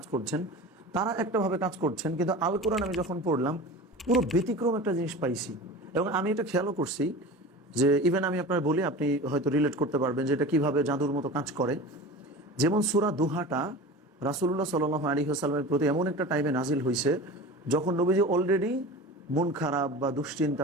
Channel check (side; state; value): both; normal; correlation 0.34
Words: করছেন, তারা একটাভাবে কাজ করছেন, কিন্তু আল কোরআন আমি যখন পড়লাম পুরো ব্যতিক্রম একটা জিনিস পাইছি। এবং আমি এটা খেয়ালও করছি যে ইভেন আমি আপনার বলি, আপনি হয়তো রিলেট করতে পারবেন যে এটা কিভাবে জাদুর মতো কাজ করে। যেমন সূরা দুহাটা রাসূলুল্লাহ সাল্লাল্লাহু আলাইহি ওয়াসাল্লামের প্রতি এমন একটা টাইমে নাজিল হয়েছে যখন নবীজি অলরেডি মন খারাপ বা দুশ্চিন্তা